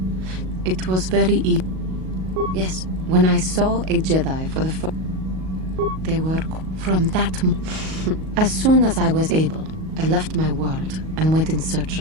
It was very easy. Yes, when I saw a Jedi for the first... They were... From that... As soon as I was able, I left my world and went in search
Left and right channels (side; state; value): left; late; 38 ms